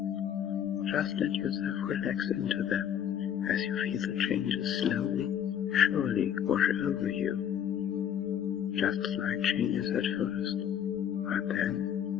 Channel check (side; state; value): right; quieter; 9.3 dB